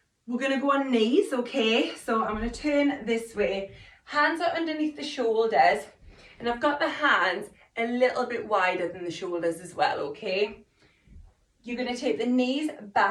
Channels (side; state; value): both; identical; correlation 1.00